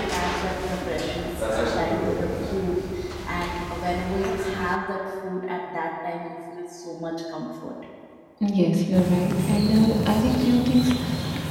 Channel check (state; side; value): identical; both; correlation 1.00